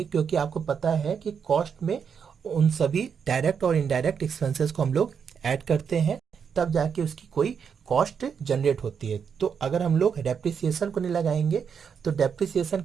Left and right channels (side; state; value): left; quieter; 6.9 dB